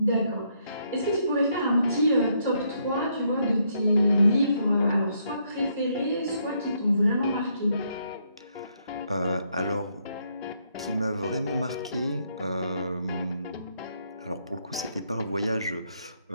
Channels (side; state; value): both; inverted; correlation -0.74